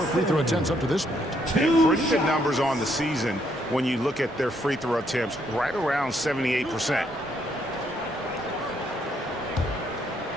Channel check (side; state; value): both; normal; correlation 0.72